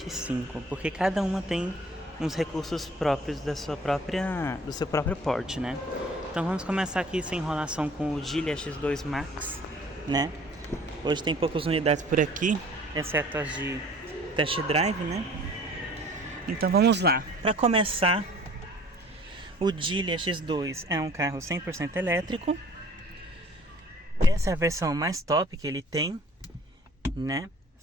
porque cada uma tem uns recursos próprios do seu próprio porte, né? Então vamos começar aqui sem enrolação com o Geely EX2 Max, né? Hoje tem poucas unidades por aqui, exceto as de test drive, né? Então vamos lá. Para começar, o Geely EX2 é um carro 100% elétrico. Essa é a versão mais top que ele tem, né?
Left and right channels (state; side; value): normal; both; correlation 0.51